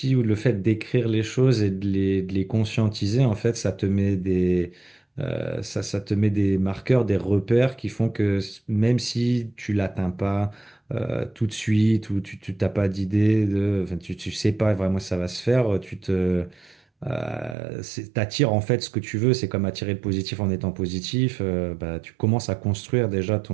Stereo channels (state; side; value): drops out; left; at 17.6 s